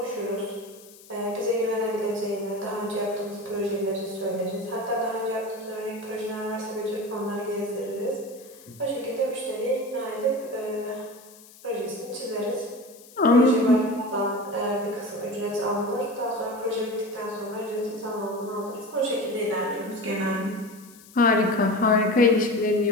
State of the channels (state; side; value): noise; left; hiss, 22 dB below the sound